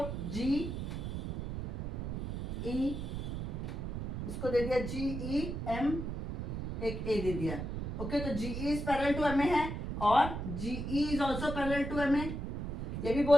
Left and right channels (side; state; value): right; noise; rumble, 4 dB below the sound